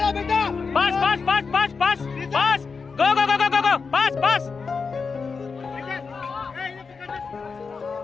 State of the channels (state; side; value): quieter; right; 5.0 dB